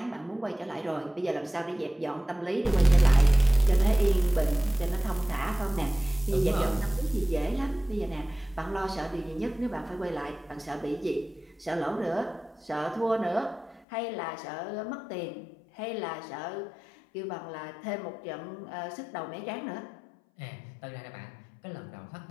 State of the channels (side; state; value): right; drops out; at 13.9 s